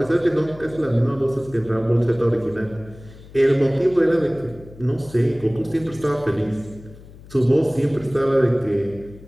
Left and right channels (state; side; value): noise; left; hum, 20 dB below the sound